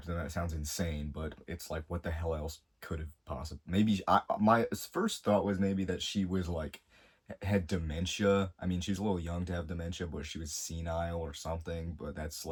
them. That sounds insane. But it's like, what the hell else could have possibly, maybe my first thought was maybe that she was like had dementia. I mean, she was a little young to have dementia, but she was senile or something. But that's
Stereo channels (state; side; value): identical; both; correlation 1.00